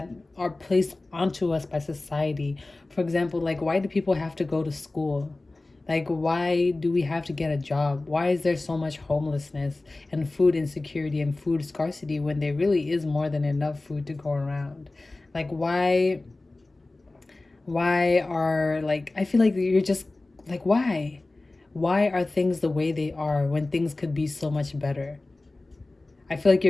are placed onto us by society. For example, like why do people have to go to school? Like why do we have to get a job? Why is there so much homelessness and food insecurity and food scarcity when there really is more than enough food to go around? Like why are like I feel like you're just like why are things the way they are when things could be so much better? I feel like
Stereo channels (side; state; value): right; quieter; 3.0 dB